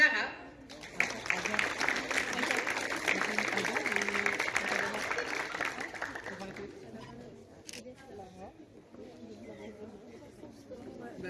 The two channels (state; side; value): identical; both; correlation 1.00